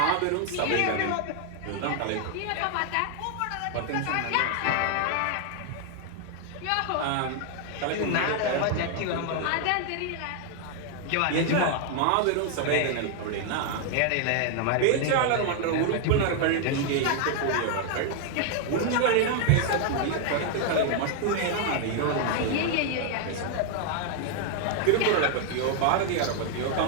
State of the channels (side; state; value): both; different; correlation 0.00